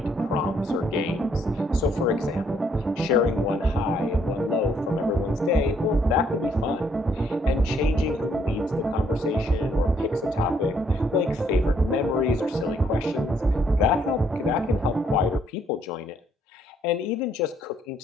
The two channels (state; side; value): normal; both; correlation 0.69